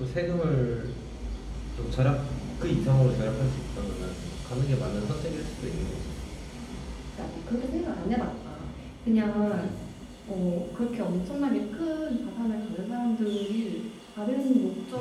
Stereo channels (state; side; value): identical; both; correlation 1.00